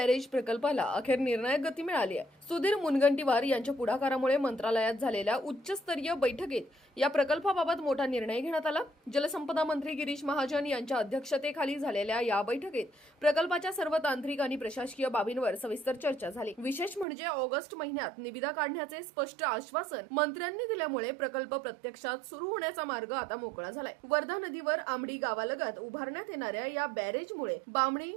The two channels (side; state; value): left; drops out; at 17.1 s